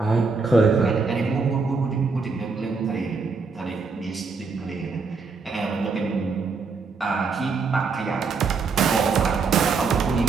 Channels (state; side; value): quieter; left; 4.7 dB